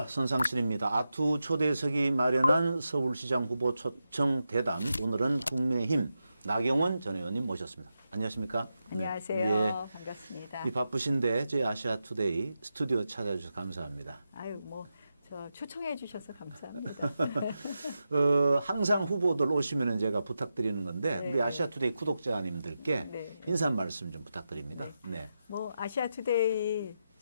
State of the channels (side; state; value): both; inverted; correlation -0.89